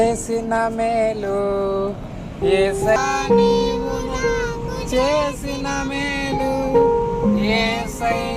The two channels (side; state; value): both; identical; correlation 1.00